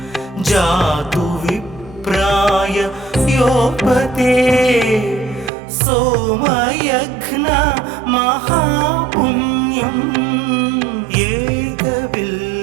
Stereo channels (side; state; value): left; drops out; at 5.5 s